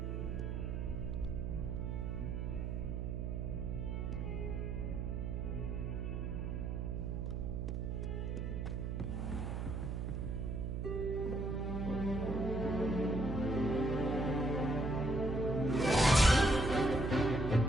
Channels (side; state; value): right; noise; hum, 2 dB below the sound